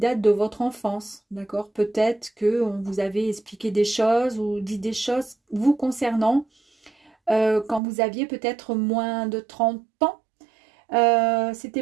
de votre enfance, d'accord. Peut-être qu'on vous avait expliqué des choses ou dit des choses vous concernant quand vous aviez peut-être moins de 30 ans.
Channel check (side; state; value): left; drops out; at 7.8 s